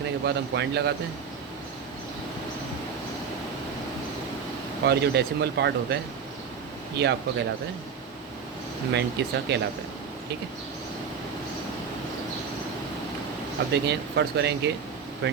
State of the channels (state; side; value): quieter; left; 6.4 dB